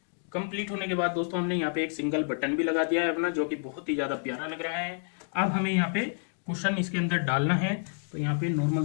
कंप्लीट होने के बाद दोस्तों हमने यहाँ पे एक सिंगल बटन भी लगा दिया है अपना, जो कि बहुत ही ज्यादा प्यारा लग रहा है। अब हमें यहाँ पे कुशन इसके अंदर डालना है, तो यहाँ पे नॉर्मल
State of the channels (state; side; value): silent; right; digital silence